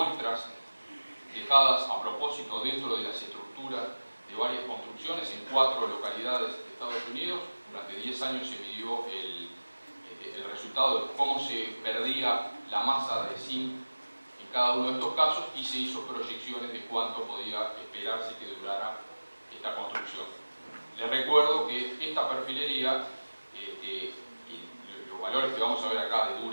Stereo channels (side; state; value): both; inverted; correlation -1.00